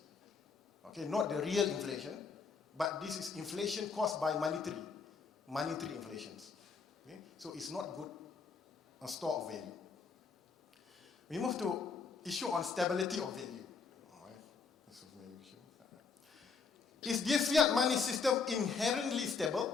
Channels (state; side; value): quieter; right; 5.1 dB